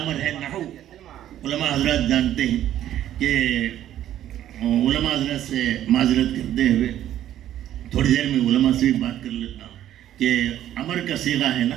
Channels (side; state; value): left; quieter; 12.0 dB